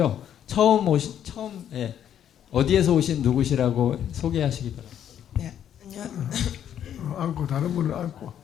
예, 어디에서 오신 누구시라고 소개하시기 바랍니다. 네, 앉고 다른 분을 앉고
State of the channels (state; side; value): quieter; right; 9.9 dB